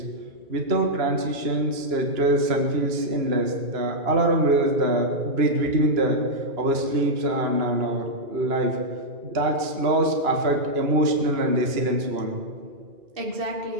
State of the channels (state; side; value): late; left; 2.9 ms